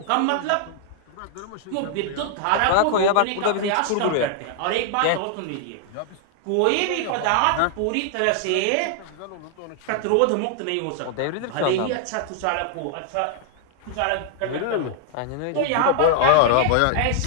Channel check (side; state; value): both; different; correlation 0.00